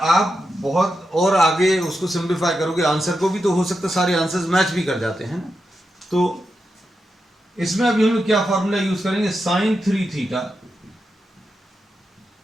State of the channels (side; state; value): both; normal; correlation 0.88